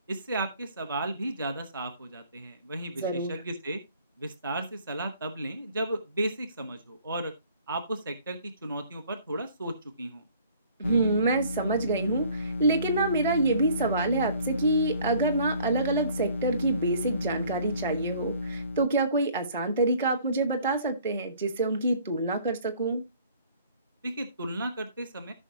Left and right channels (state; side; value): inverted; both; correlation -0.56